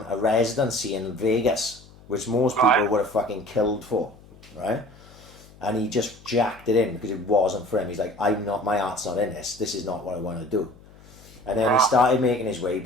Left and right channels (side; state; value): left; noise; hum, 23 dB below the sound